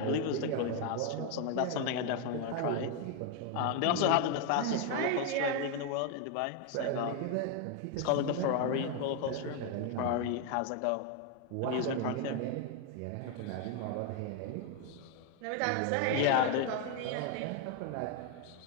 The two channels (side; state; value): both; different; correlation 0.01